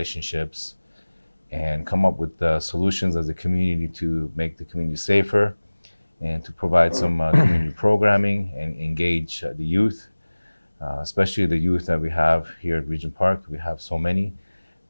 and come up with solutions as a community to make the community safer and to provide some community programming and engage the youth. Especially the youth that we have here at Regent Park. We have so many.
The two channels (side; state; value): both; inverted; correlation -1.00